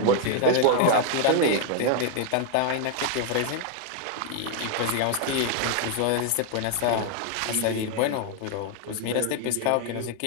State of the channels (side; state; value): both; different; correlation 0.00